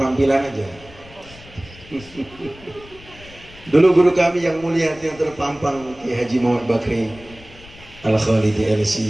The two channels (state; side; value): noise; left; rumble, 21 dB below the sound